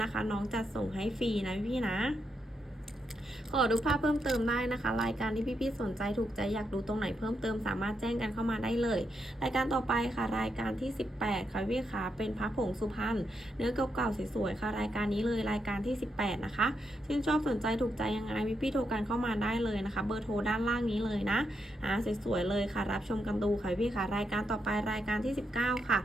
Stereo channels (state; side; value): normal; both; correlation 0.82